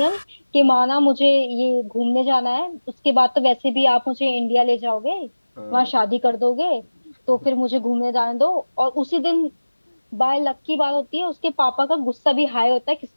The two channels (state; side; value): inverted; both; correlation -1.00